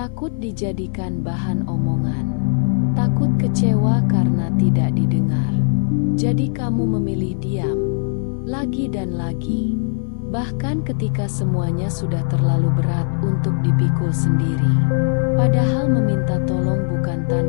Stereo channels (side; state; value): right; silent; 64 dB below the other